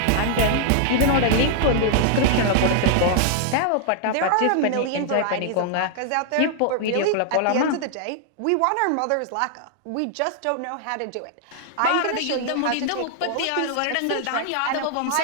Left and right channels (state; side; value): different; both; correlation -0.01